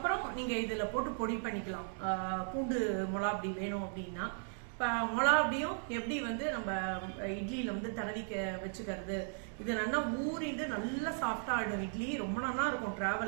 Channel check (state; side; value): silent; left; 53 dB below the other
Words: நீங்கள் இதில் போட்டு பொடி பண்ணிக்கலாம். பூண்டு மிளகாப்பொடி வேணும் அப்படின்னா. இப்போ மிளகாப்பொடியும் எப்படி வந்து நம்ம இட்லியில் வந்து தடவிக்க வச்சுக்கிறது, இது நல்லா ஊறிட்டு நல்லா சாஃப்டாக ஆகிடும் இட்லி. ரொம்ப நல்லா இருக்கும்